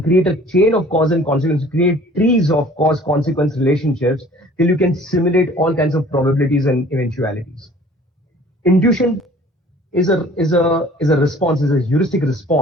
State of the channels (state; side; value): normal; both; correlation 0.51